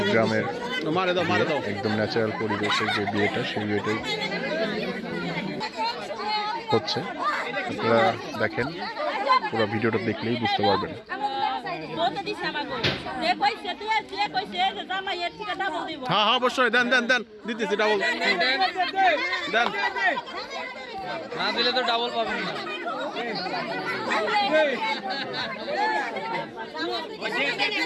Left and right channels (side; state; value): both; identical; correlation 1.00